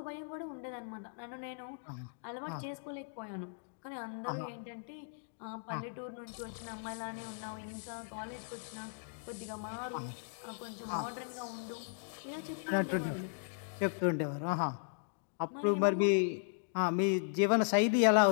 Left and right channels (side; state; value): right; silent; digital silence